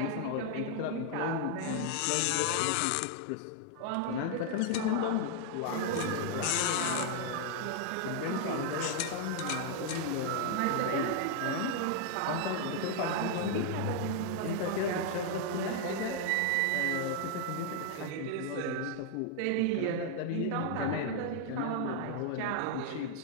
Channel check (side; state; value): both; different; correlation 0.00